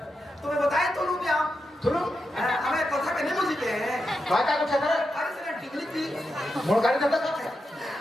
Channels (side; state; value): both; normal; correlation 0.87